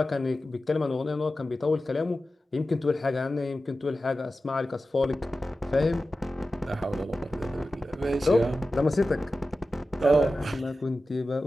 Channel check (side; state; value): both; normal; correlation 0.94